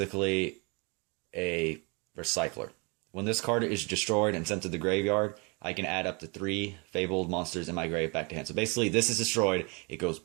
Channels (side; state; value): left; quieter; 30.7 dB